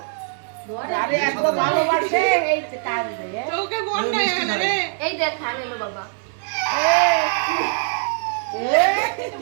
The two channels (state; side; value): silent; left; 64 dB below the other